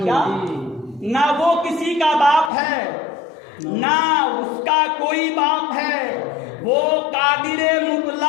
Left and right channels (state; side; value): drops out; right; at 2.5 s